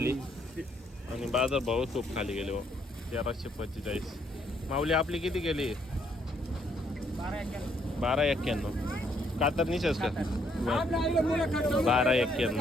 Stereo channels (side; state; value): both; normal; correlation 0.70